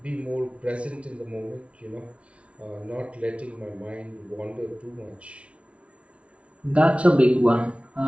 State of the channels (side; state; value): left; late; 0.062 ms